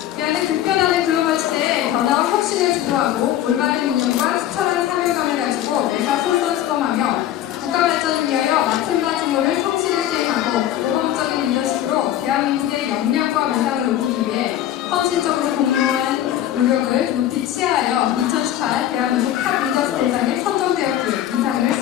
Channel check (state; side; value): quieter; right; 12.2 dB